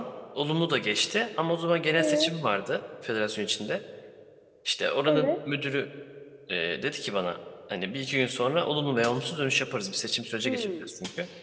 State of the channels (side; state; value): both; identical; correlation 1.00